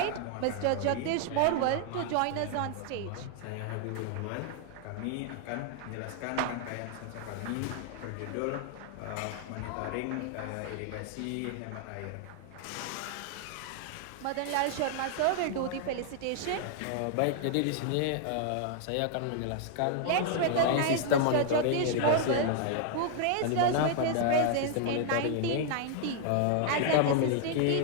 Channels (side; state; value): both; different; correlation 0.00